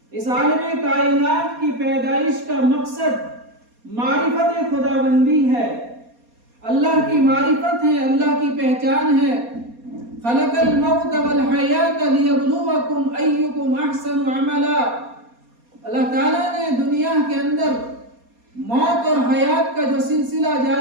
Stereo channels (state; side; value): late; left; 4.2 ms